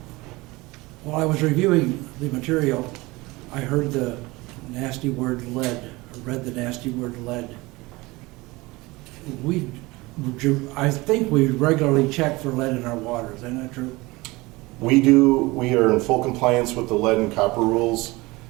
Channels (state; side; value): quieter; left; 22.2 dB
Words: While I was reviewing the material, I heard the nasty word lead, read the nasty word lead. I think we regularly check for lead in our water, is that not true? We do. We are in full compliance with the lead and copper rules,